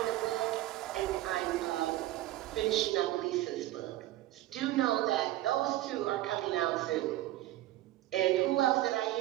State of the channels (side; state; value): left; quieter; 15.4 dB